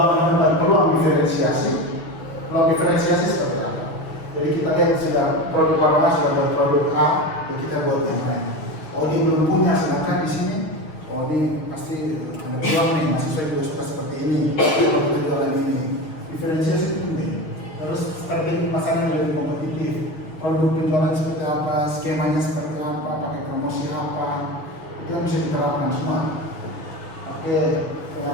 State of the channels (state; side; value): late; right; 6.4 ms